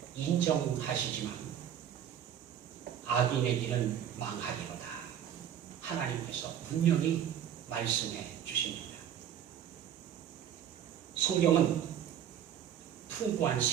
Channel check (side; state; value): left; quieter; 9.7 dB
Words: 인정하시지만 악인의 길은 망하리로다. 하나님께서 분명히 말씀해 주십니다. 성경은 풍부한